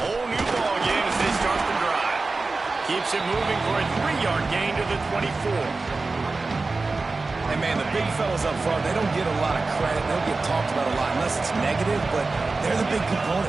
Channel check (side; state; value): left; quieter; 3.7 dB